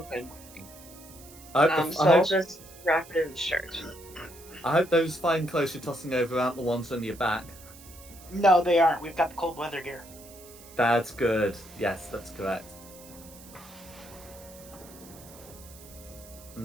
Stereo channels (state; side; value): noise; right; hiss, 20 dB below the sound